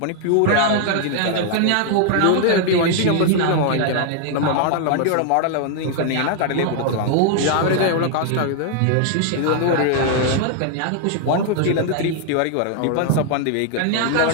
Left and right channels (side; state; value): both; different; correlation 0.00